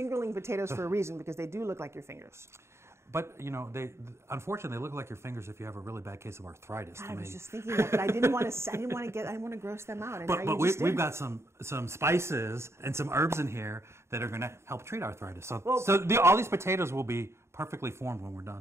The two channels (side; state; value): left; late; 0.13 ms